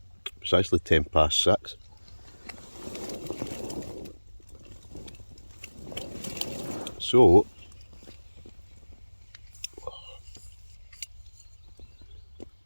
It's actually 6:10. So,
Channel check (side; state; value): both; inverted; correlation -1.00